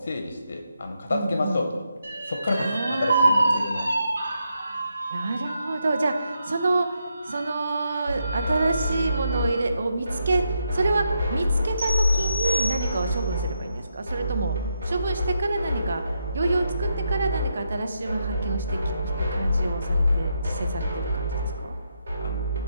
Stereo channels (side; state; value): both; inverted; correlation -0.81